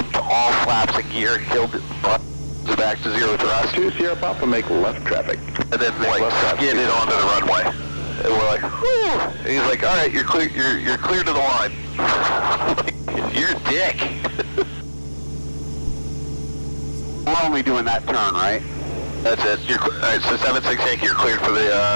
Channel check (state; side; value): inverted; both; correlation -1.00